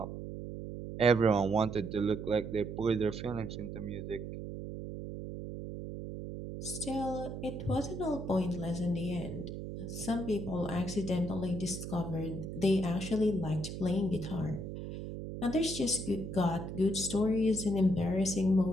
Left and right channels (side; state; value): right; noise; hum, 7 dB below the sound